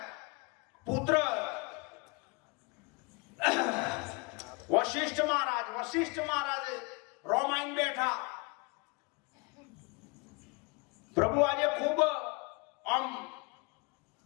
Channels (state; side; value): quieter; right; 28.9 dB